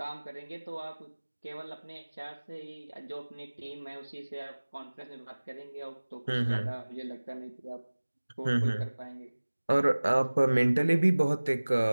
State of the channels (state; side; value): inverted; both; correlation -1.00